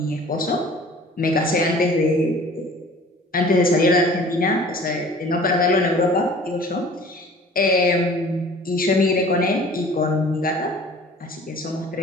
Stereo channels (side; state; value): both; normal; correlation 0.47